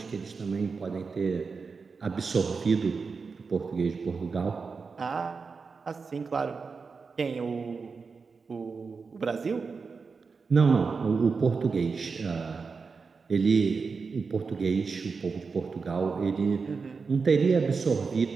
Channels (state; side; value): quieter; left; 4.9 dB